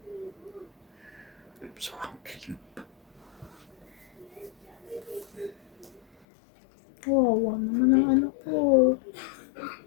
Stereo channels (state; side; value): drops out; right; at 6.1 s